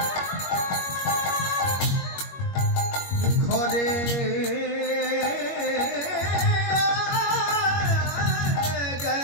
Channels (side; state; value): right; late; 21 ms